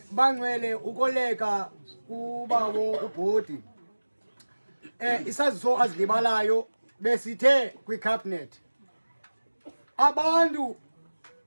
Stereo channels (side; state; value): both; inverted; correlation -1.00